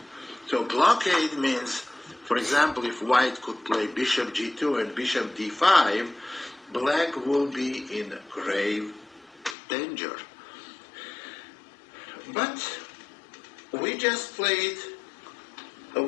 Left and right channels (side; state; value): right; drops out; at 9.6 s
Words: So blockade means, for example, if white could play bishop g2 and bishop d5, black will be in grave danger. But we just played